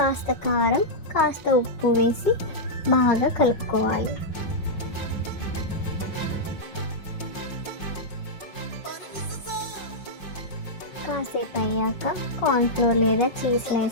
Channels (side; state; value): right; late; 5.4 ms